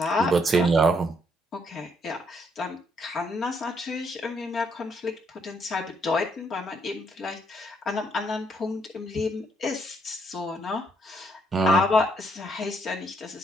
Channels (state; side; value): normal; both; correlation 0.72